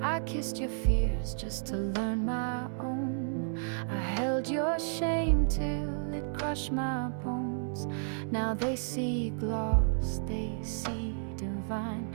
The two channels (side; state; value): left; silent; 56 dB below the other